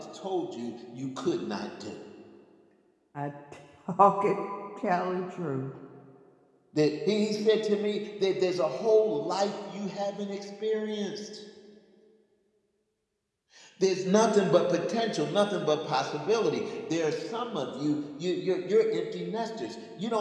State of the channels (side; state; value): both; identical; correlation 1.00